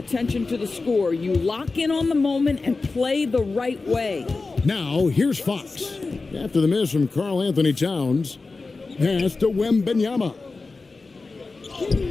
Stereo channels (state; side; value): quieter; right; 3.8 dB